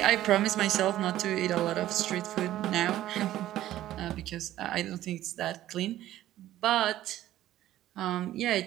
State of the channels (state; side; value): quieter; left; 13.8 dB